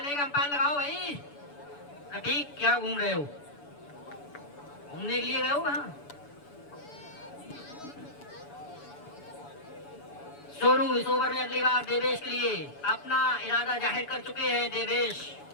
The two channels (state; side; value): late; right; 7.0 ms